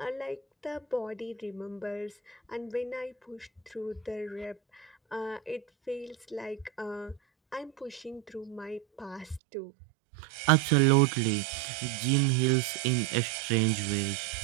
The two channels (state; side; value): drops out; left; at 9.4 s